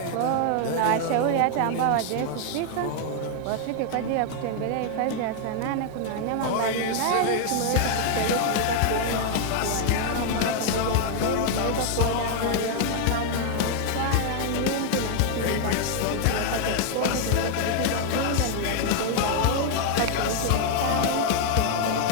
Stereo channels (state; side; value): different; both; correlation 0.00